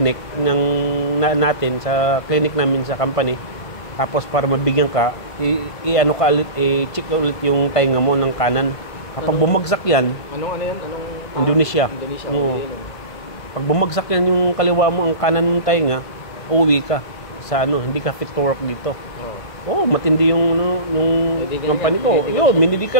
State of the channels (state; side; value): late; right; 1.5 ms